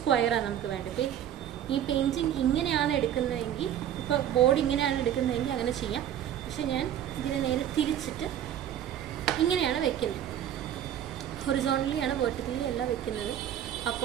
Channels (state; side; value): quieter; left; 10.5 dB